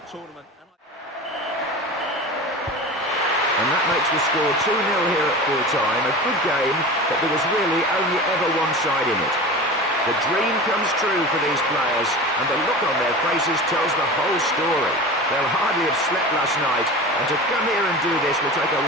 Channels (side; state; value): both; normal; correlation 0.32